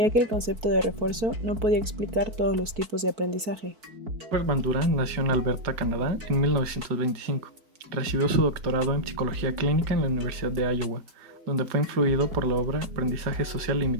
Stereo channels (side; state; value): left; late; 4.5 ms